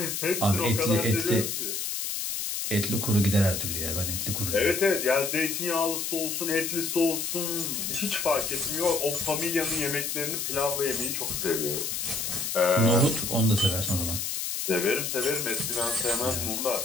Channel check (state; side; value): noise; left; hiss, 2 dB below the sound